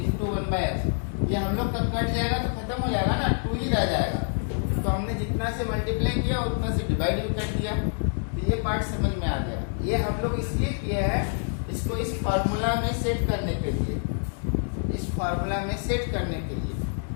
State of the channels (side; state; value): right; silent; 60 dB below the other